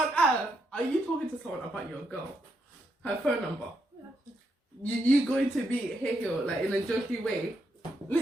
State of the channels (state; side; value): normal; both; correlation 0.80